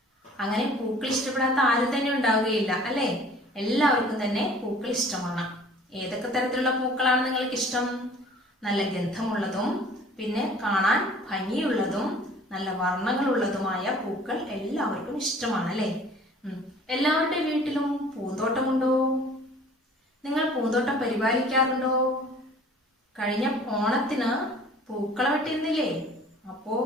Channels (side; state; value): both; normal; correlation 0.50